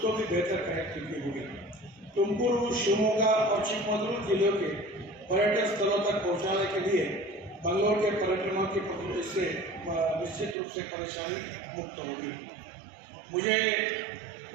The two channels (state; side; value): drops out; left; at 10.6 s